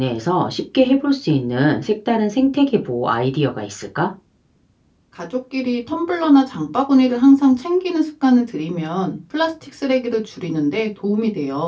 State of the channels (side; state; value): both; identical; correlation 1.00